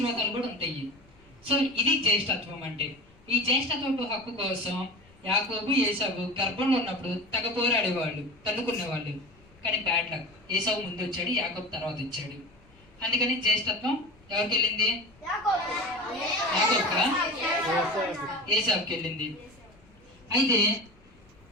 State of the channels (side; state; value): left; noise; rumble, 28 dB below the sound